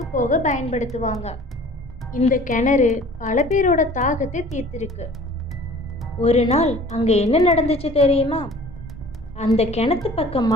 போக பயன்படுத்துவாங்க. இந்த கிணறு பல பேரோட தாகத்தை தீர்த்திருக்கு. ஒரு நாள் அங்கே என்ன நடந்துச்சு தெரியுமா? அந்த கிணத்து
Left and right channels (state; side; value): normal; both; correlation 0.48